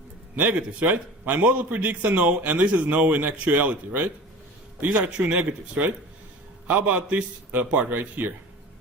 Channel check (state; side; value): normal; both; correlation 0.38